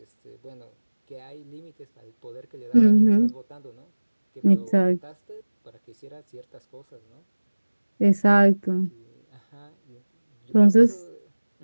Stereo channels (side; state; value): both; inverted; correlation -1.00